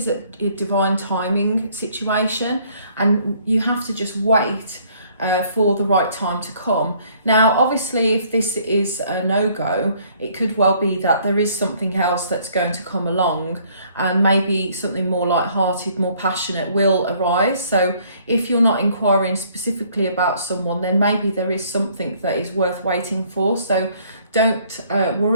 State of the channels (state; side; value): inverted; both; correlation -0.62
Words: a divine timing situation, and you have to just wait for the right time to come. Now, obviously, if this is a no-go, it could well be that there is something else that's going to come along, and maybe something more light-hearted, more passionate will arise. So if you're not inquiring specifically about someone, then maybe there is something that is worth waiting for. So don't